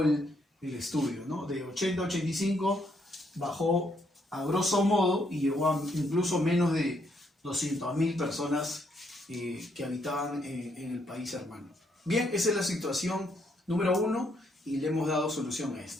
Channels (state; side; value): normal; both; correlation 0.73